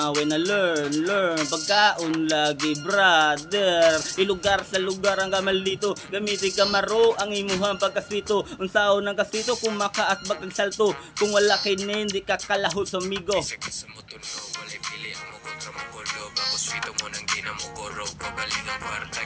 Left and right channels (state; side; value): identical; both; correlation 1.00